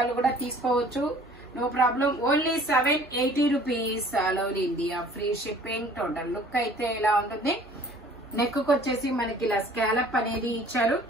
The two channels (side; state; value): both; normal; correlation 0.52